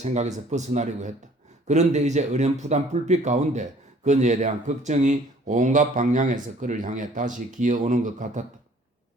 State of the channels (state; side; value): normal; both; correlation 0.55